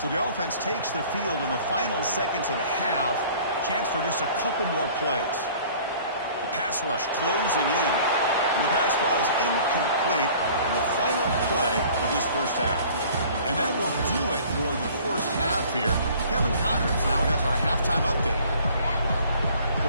So the offense takes the field in the final seconds of the half. Chance for just a couple more plays. The pass rush closing in. And the pass falls incomplete in the final play of this first half. And that will do it for the first half here. Kevin Connors now has our halftime update.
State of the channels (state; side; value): inverted; both; correlation -0.50